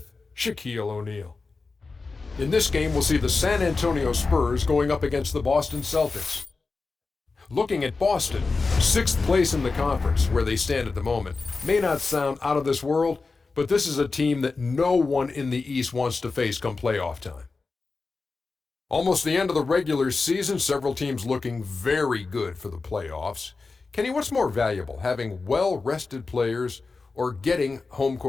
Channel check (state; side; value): quieter; right; 4.1 dB